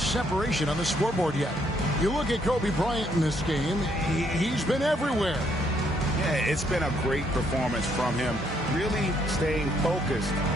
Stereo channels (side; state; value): both; normal; correlation 0.71